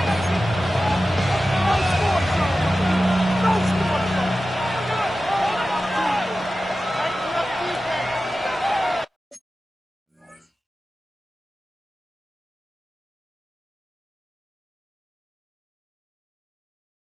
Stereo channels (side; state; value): both; normal; correlation 0.94